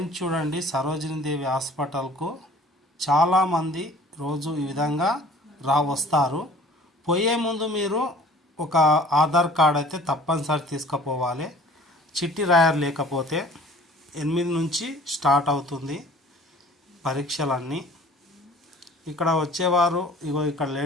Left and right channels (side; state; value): both; normal; correlation 0.49